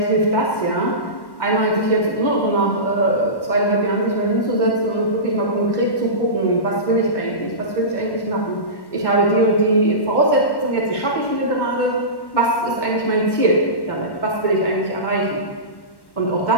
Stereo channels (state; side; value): late; right; 1.1 ms